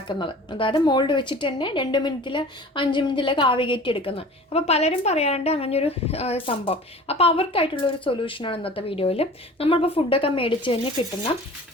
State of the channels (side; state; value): both; normal; correlation 0.42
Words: അതായത് മോൾഡ് വെച്ചിട്ട് തന്നെ 2 മിനിറ്റിൽ 5 മിനിറ്റിലൊക്കെ ആവി കയറ്റി എടുക്കുന്നത്. അപ്പോൾ പലരും പറയാറുണ്ട് അങ്ങനെയൊരു സംഭവം. അപ്പോൾ അവർക്കായിട്ടുള്ളൊരു സൊല്യൂഷനാണ് ഇന്നത്തെ വീഡിയോയിൽ. നമ്മളിപ്പോൾ ഫുഡൊക്കെ മേടിച്ച് കഴിഞ്ഞ് കിട്ടുന്ന